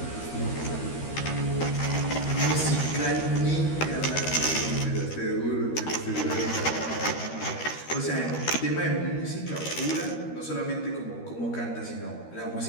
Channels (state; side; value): late; right; 13 ms